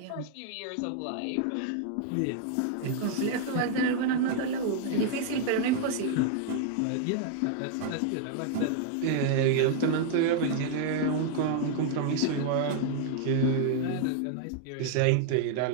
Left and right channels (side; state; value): both; different; correlation 0.00